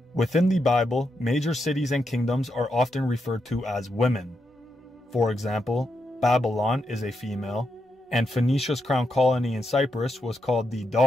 Within the Bible, major cities and kingdoms are often referred to as women. For example, Babylon is a female, and Phoenicia's crown colony in Cyprus was called the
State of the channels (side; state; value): both; normal; correlation 0.83